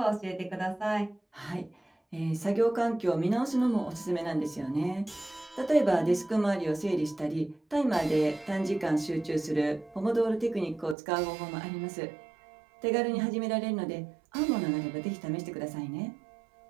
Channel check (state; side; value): drops out; left; at 11.0 s